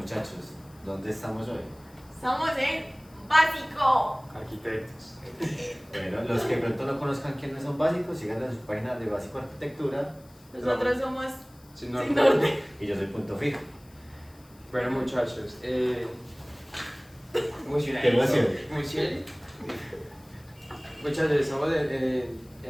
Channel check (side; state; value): left; noise; hiss, 27 dB below the sound